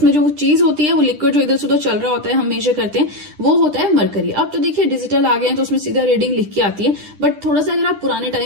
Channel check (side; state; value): left; late; 10 ms